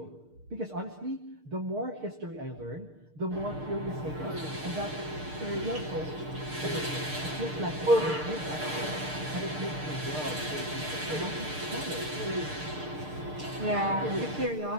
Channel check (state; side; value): late; left; 6.6 ms